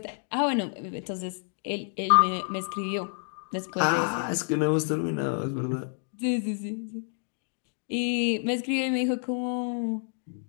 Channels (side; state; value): right; silent; 59 dB below the other